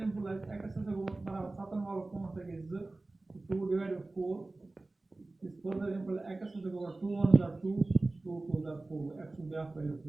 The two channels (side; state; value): left; quieter; 3.1 dB